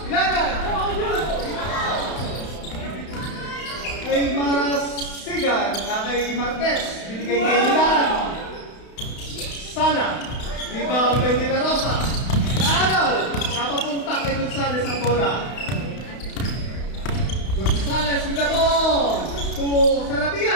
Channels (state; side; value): late; right; 32 ms